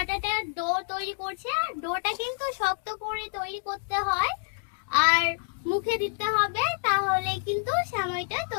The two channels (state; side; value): silent; right; digital silence